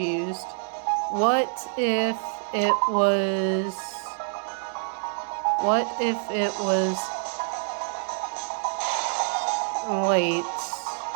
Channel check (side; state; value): left; silent; 61 dB below the other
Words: What if it was... What if it was... Wait.